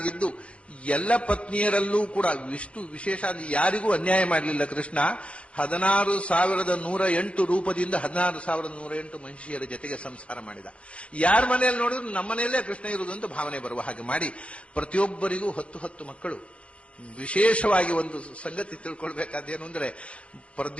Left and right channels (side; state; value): right; late; 0.061 ms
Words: ಎಲ್ಲ ಪತ್ನಿಯರಲ್ಲೂ ಕೂಡ ಇಷ್ಟು ವಿಶೇಷ ಯಾರಿಗೂ ಅನ್ಯಾಯ ಮಾಡಲಿಲ್ಲ ಕೃಷ್ಣ. 16,108 ರೂಪದಿಂದ 16,108 ಮಹಿಷಿಯರ ಜೊತೆಗೆ ಸಂಸಾರ ಮಾಡಿದ. ಯಾರ ಮನೆಯಲ್ಲಿ ನೋಡಿದ್ರು ನಮ್ಮ ಮನೆಯಲ್ಲೇ ಕೃಷ್ಣ ಇರುವುದು ಅಂತ ಭಾವನೆ ಬರುವ ಹಾಗೆ ಮಾಡಿ ಪ್ರತಿಯೊಬ್ಬರಿಗೂ 10 ಮಕ್ಕಳು. ವಿಶೇಷವಾಗಿ ಒಂದು ಸಂಗತಿ ತಿಳ್ಕೊಳ್ಬೇಕಾದೇನು ಅಂದ್ರೆ,